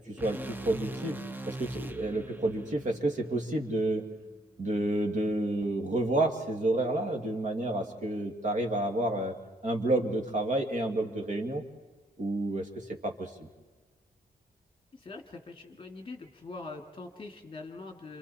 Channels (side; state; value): both; normal; correlation 0.69